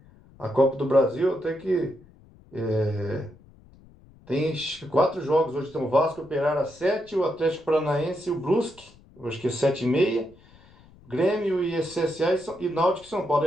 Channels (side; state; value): left; noise; rumble, 26 dB below the sound